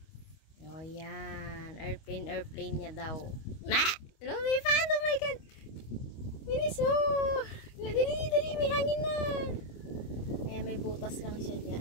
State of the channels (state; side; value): late; right; 25 ms